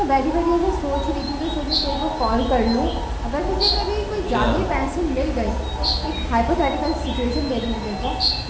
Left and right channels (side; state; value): both; identical; correlation 1.00